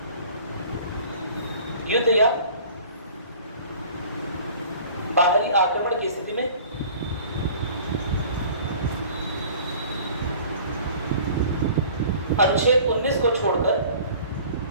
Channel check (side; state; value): both; inverted; correlation -0.47